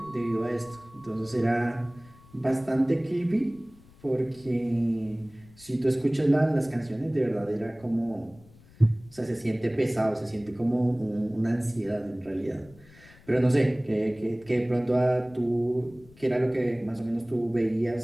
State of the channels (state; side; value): noise; left; rumble, 25 dB below the sound